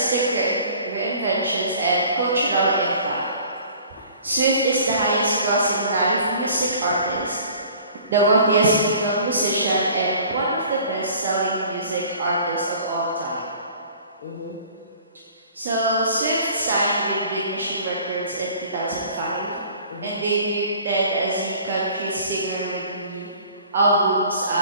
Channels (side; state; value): both; inverted; correlation -0.50